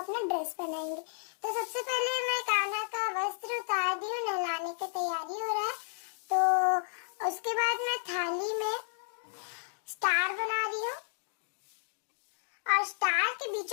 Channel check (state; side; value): silent; right; digital silence